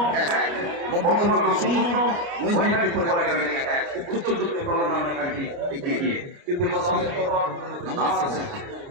বর্ধমান লোক 0 নৈহাটি ফুটবল একাডেমি 1 উত্তর চব্বিশ পরগনা নৈহাটি এগিয়ে দীর্ঘ 10 মিনিট পর নামাজ শেষে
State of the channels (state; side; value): late; left; 29 ms